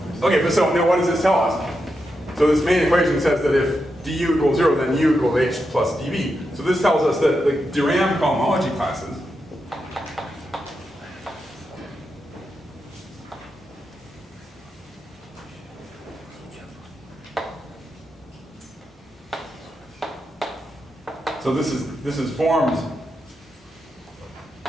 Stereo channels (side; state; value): both; normal; correlation 0.86